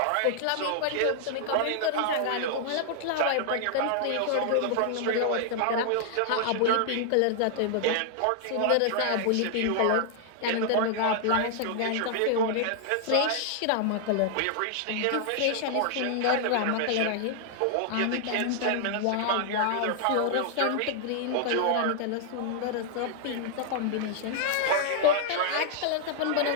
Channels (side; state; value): both; different; correlation 0.00